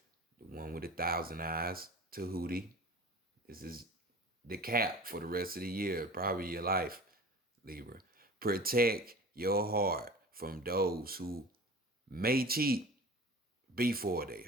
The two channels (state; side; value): normal; both; correlation 0.39